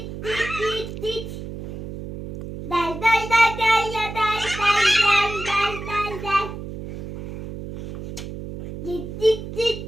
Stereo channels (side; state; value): right; noise; hum, 9 dB below the sound